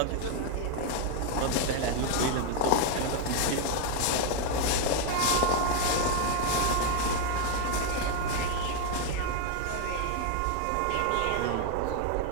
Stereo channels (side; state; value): both; different; correlation 0.00